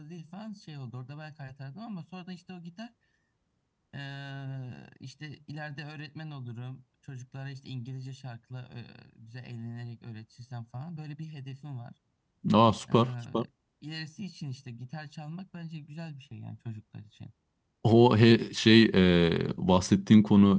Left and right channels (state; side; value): identical; both; correlation 1.00